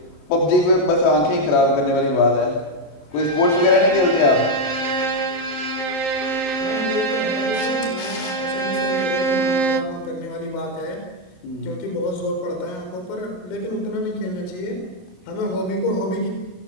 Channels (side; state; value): right; late; 27 ms